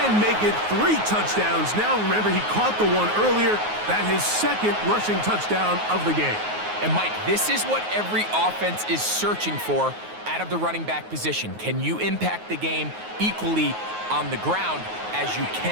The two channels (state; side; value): late; left; 9.4 ms